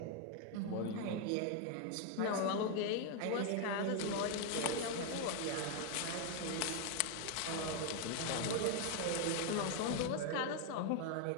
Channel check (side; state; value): both; different; correlation 0.01